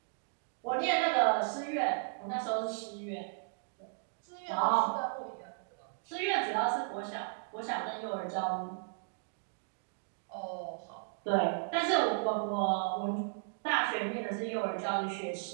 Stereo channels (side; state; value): left; silent; digital silence